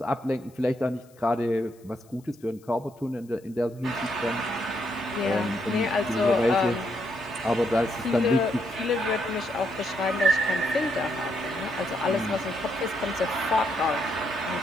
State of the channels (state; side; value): noise; left; hiss, 30 dB below the sound